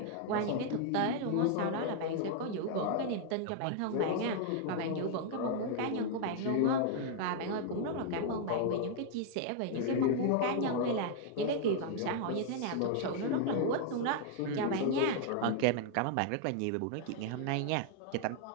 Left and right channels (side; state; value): both; different; correlation 0.00